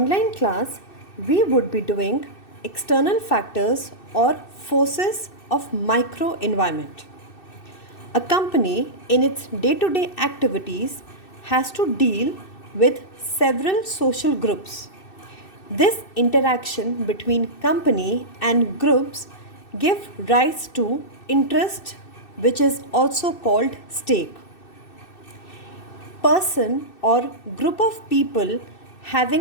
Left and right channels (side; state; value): right; late; 2.6 ms